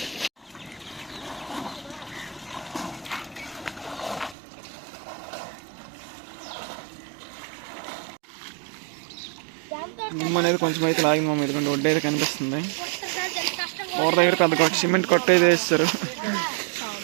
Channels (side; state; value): left; drops out; at 4.4 s